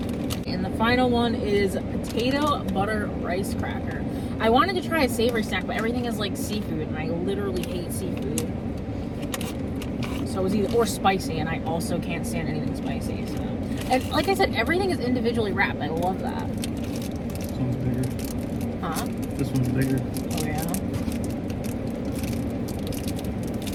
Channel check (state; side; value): identical; both; correlation 1.00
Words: And the final one is potato butter rice cracker. I wanted to try a savory snack, but everything is like seafood, and I literally hate seafood. So it was either, or spicy, and I also can't stand anything spicy. So, and like I said, everything is individually wrapped. I love that. This one's bigger. Huh? This one's bigger. Oh yeah.